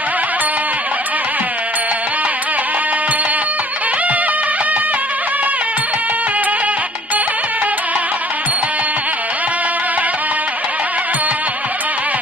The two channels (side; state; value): both; normal; correlation 0.53